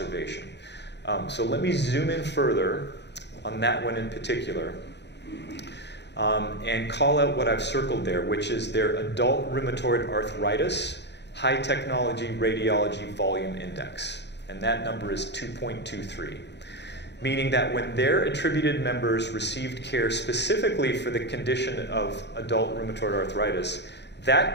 So let me zoom in further on that one in particular and call out what I've circled there, which is their adult rheumatoid arthritis high technology radiology volume index. And that number is 2.23, meaning that when their attributed members received care specifically for the condition of adult rheumatoid arthritis,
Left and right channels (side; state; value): right; late; 0.50 ms